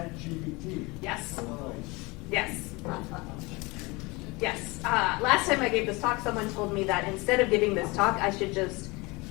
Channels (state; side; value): quieter; right; 24.9 dB